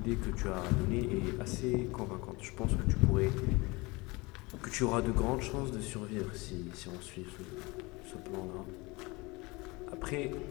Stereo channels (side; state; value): right; quieter; 24.5 dB